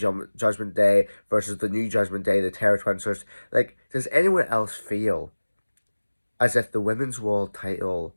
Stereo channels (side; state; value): both; inverted; correlation -1.00